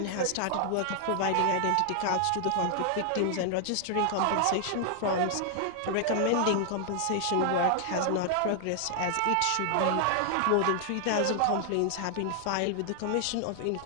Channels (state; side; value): different; both; correlation 0.00